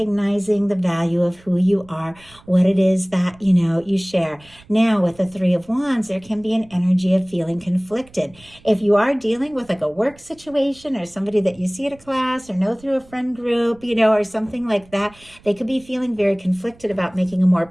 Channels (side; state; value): right; noise; rumble, 26 dB below the sound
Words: the value of who you are, what it is that, you share. Now, with the Three of Wands, there can be an energy of feeling conflicted. If you are dealing with like a work situation or somebody that you see at a class or know through a friend group, or something like that, they could be feeling very conflicted about making a more